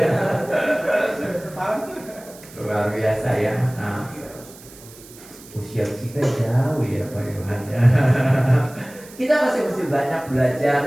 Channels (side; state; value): right; noise; hiss, 20 dB below the sound